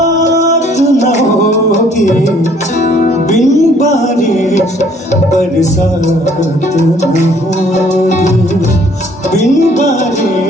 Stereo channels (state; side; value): normal; both; correlation 0.60